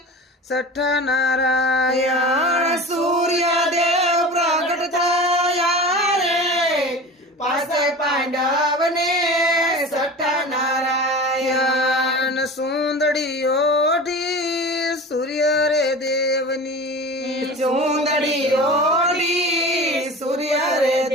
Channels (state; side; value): normal; both; correlation 0.35